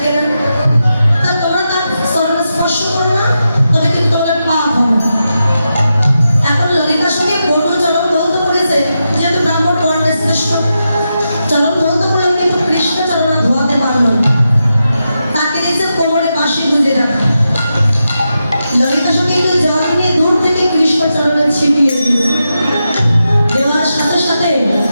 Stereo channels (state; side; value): inverted; both; correlation -0.88